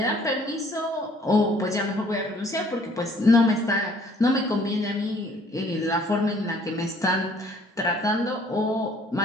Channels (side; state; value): both; normal; correlation 0.59